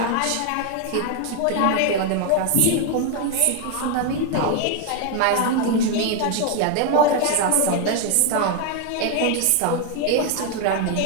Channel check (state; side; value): different; both; correlation 0.00